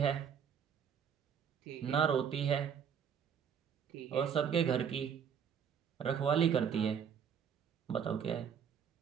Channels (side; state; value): left; quieter; 7.7 dB